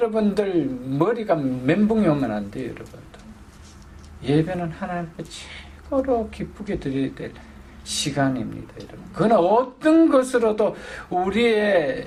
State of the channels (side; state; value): both; identical; correlation 1.00